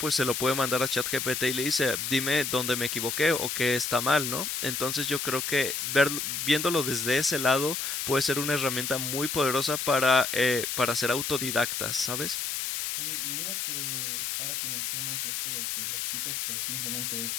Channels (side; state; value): left; noise; hiss, 2 dB below the sound